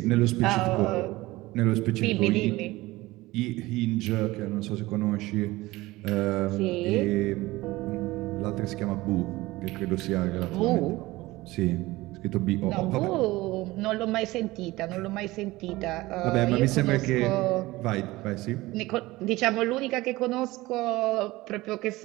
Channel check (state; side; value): quieter; left; 19.4 dB